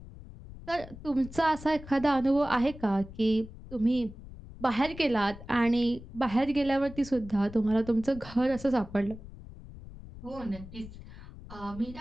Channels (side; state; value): left; noise; rumble, 15 dB below the sound